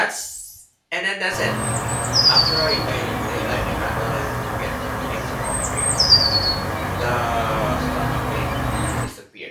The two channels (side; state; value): both; identical; correlation 1.00